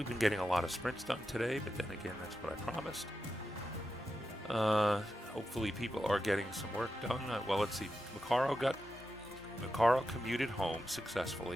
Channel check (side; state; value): both; normal; correlation 0.89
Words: been getting a lot of sprints done today, but then again, that's what I promised. Hopefully people are getting some work done. Well, let's see. Macaro commuted home